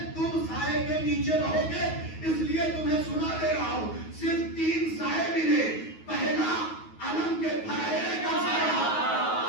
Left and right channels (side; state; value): right; late; 9.4 ms